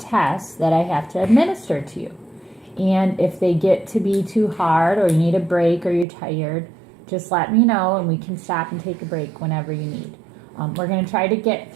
that I have to administer to you. And if they get to be too hard or you need a break or you're tired, just let me know and we can stop and take a break whenever you need. We're going to try to get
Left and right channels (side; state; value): left; drops out; at 6.1 s